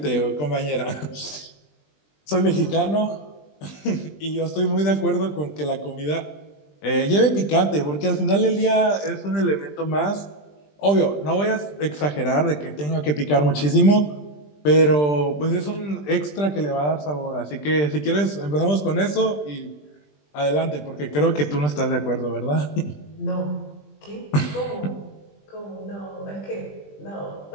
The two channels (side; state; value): right; late; 20 ms